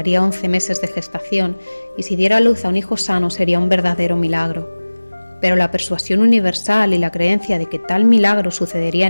11 meses de gestación y si diera a luz a un hijo sano sería un verdadero milagro. Pero la persuasión universal y la creencia de que tal milagro sucedería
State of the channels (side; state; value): both; inverted; correlation -1.00